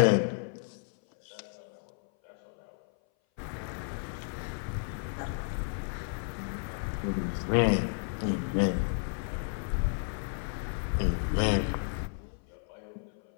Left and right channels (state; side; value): silent; right; 56 dB below the other